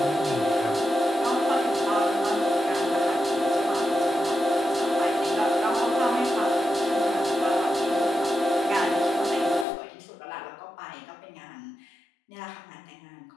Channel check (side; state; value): right; drops out; at 9.7 s